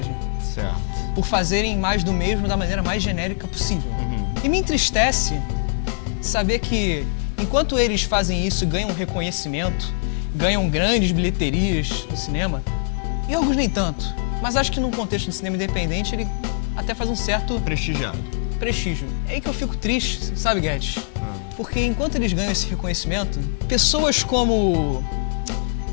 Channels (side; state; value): right; silent; 64 dB below the other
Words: Certo. por fazerem mais do mesmo da maneira mais genérica possível. E me entristece saber que, enquanto eles fazem isso e ganham reconhecimento, ganham grandes bilheterias no cinema, Yorgos nem tanto. Mas acho que num contexto de cinema independente, ele até faz um certo Prestigiado. prestígio. É aí que eu fico triste, sabe, Guedes? Porque enquanto eles ganham esse reconhecimento, pessoas como,